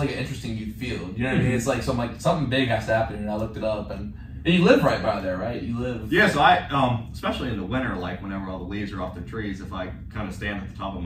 an interesting youth field. You know what I mean? It's like something big has to happen, and I looked it up, and you live right by there, right? You live. Yeah, so I, especially in the winter, like whenever all the leaves are off the trees, if I kind of stand at the top of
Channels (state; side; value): identical; both; correlation 1.00